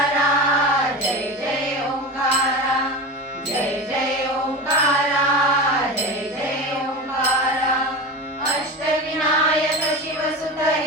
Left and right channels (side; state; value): both; normal; correlation 0.26